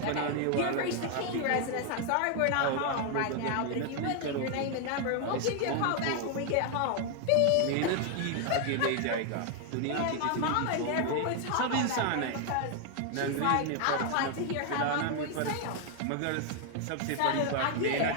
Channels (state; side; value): different; both; correlation 0.00